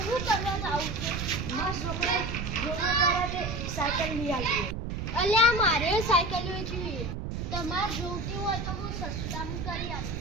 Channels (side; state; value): right; noise; rumble, 4 dB below the sound